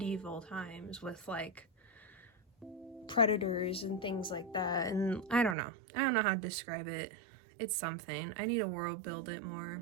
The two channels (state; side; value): drops out; left; at 5.6 s